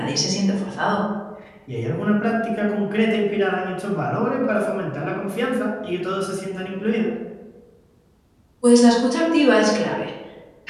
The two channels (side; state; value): both; identical; correlation 1.00